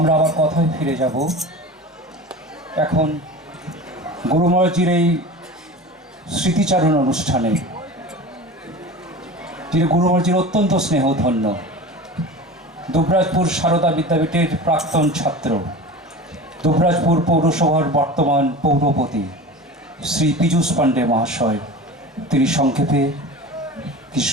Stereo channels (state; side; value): normal; both; correlation 0.34